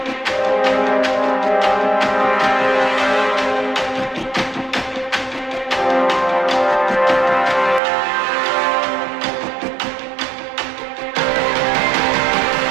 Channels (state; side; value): drops out; left; at 7.8 s